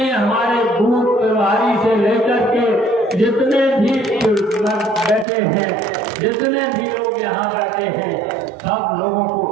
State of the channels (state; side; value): drops out; left; at 5.2 s